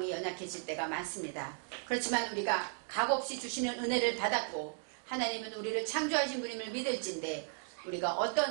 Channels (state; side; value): silent; left; 54 dB below the other